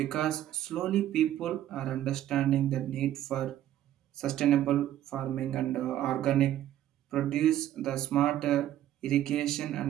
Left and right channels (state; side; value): quieter; left; 12.4 dB